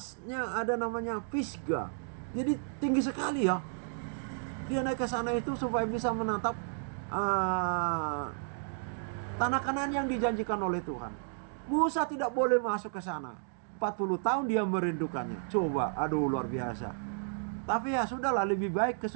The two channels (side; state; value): left; silent; digital silence